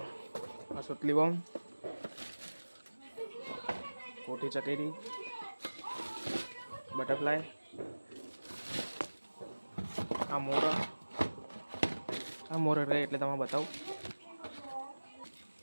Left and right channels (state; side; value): inverted; both; correlation -1.00